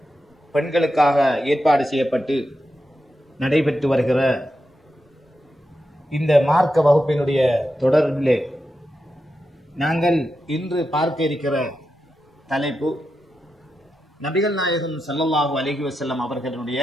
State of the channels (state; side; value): normal; both; correlation 0.88